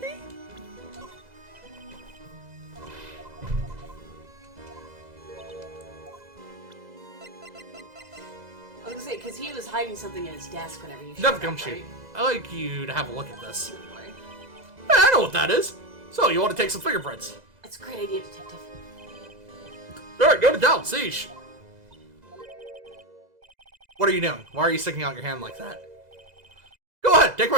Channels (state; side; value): late; left; 2.0 ms